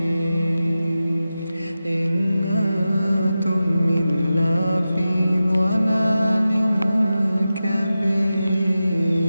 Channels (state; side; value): inverted; both; correlation -0.93